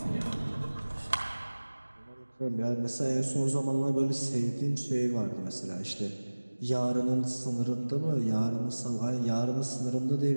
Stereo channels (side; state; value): both; inverted; correlation -1.00